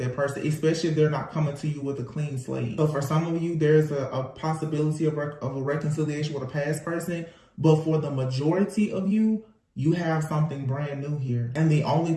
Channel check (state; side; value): identical; both; correlation 1.00